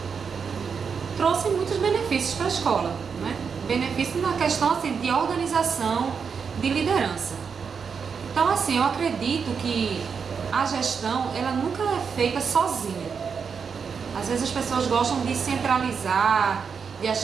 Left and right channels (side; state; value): left; quieter; 6.1 dB